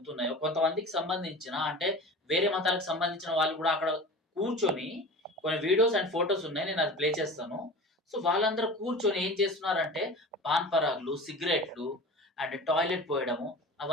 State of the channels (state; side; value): normal; both; correlation 0.36